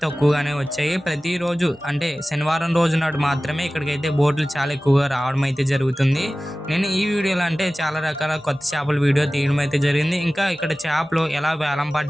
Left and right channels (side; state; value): both; normal; correlation 0.97